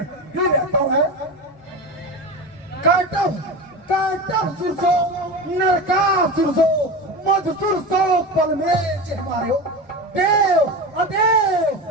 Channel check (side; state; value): both; normal; correlation 0.25